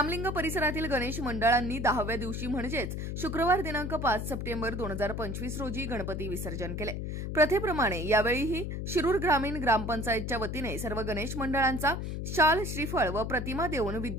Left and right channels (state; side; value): noise; left; hum, 4 dB below the sound